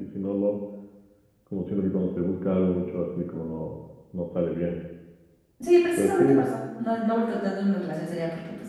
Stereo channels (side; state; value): both; identical; correlation 1.00